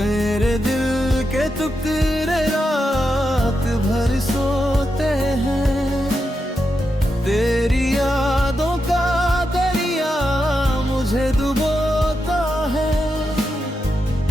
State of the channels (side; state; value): both; normal; correlation 0.86